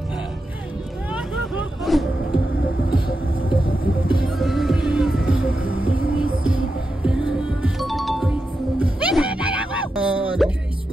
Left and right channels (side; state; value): both; normal; correlation 0.88